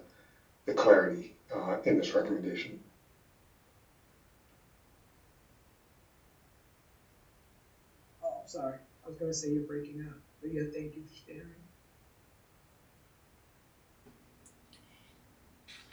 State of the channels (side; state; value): both; identical; correlation 1.00